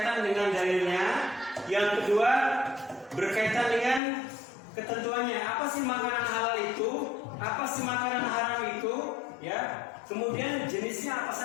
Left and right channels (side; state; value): right; drops out; at 4.0 s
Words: dengan dalilnya, yang kedua berkaitan dengan ketentuannya. Apa sih makanan halal itu? Apa sih makanan haram itu? Ya. Kemudian jenisnya apa